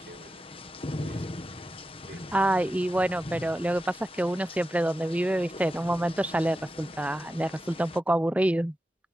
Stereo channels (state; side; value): normal; both; correlation 0.92